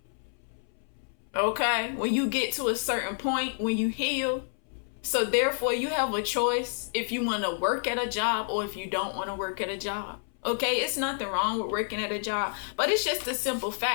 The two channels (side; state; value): right; silent; 59 dB below the other